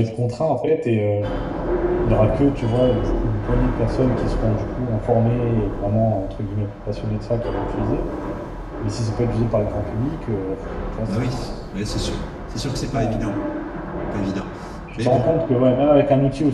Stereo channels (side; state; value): both; identical; correlation 1.00